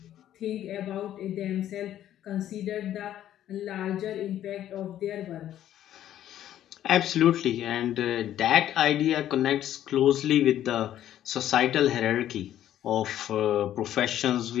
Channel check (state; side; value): quieter; right; 11.7 dB